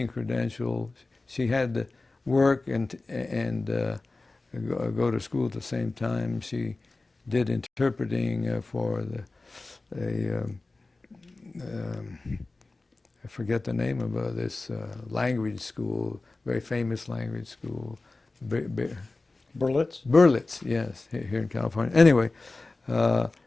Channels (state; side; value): quieter; right; 3.3 dB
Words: credential, she had to work and go to school at the same time. She did interpreting for I forget the name of this language school, very famous language school. Berlitz? Berlitz, yes, here in California. Anyway, so